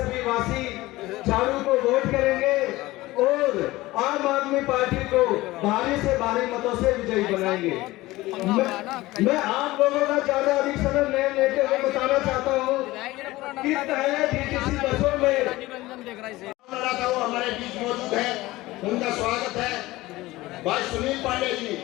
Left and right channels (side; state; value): right; quieter; 18.6 dB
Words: वासी झाड़ू को वोट करेंगे और आम आदमी पार्टी को भारी से भारी मतों से विजयी बनाएंगे। मैं आप लोगों का ज्यादा अधिक समय नहीं लेते हुए बताना चाहता हूँ कि पहले डीटीसी बसों में हमारे बीच मौजूद है, उनका स्वागत है। भाई सुनील पांडे जी,